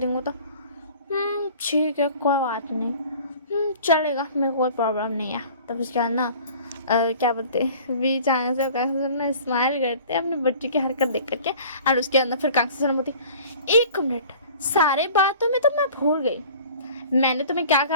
तो ठीक है कोई बात नहीं, चलेगा, मेरे को कोई प्रॉब्लम नहीं है। तब उसके बाद ना क्या बोलते हैं, वी चांग से कांग्स ना स्माइल करते हैं अपने बच्चे की हरकत देख करके। और उसके अंदर फिर कांग्स बोलती, 1 मिनट, सारे बातों में तो मैं भूल गई, मैंने तुम्हें क्या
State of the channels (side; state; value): both; inverted; correlation -0.46